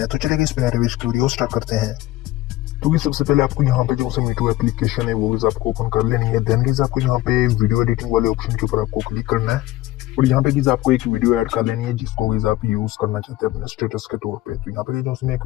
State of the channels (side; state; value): right; quieter; 16.5 dB